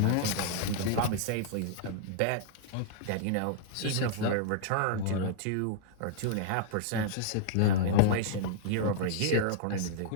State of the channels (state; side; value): different; both; correlation -0.01